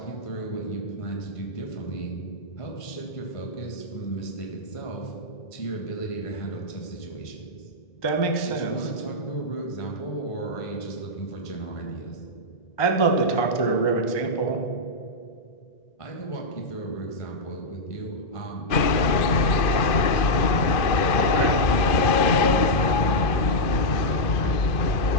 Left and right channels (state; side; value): late; right; 2.4 ms